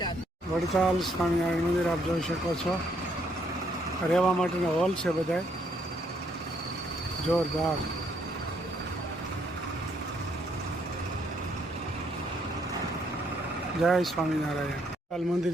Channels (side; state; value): both; normal; correlation 0.70